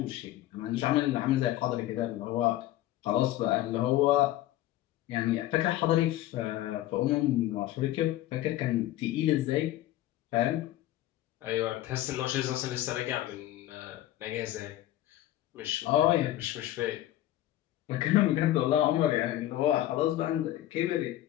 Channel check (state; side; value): quieter; right; 14.4 dB